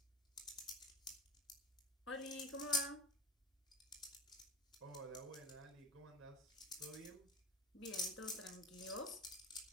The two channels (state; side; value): normal; both; correlation 0.32